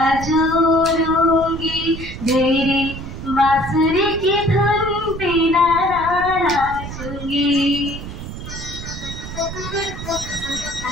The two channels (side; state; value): right; noise; rumble, 10 dB below the sound